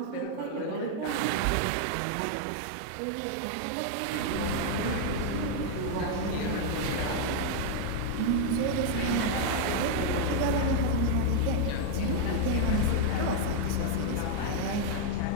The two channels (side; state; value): both; different; correlation 0.00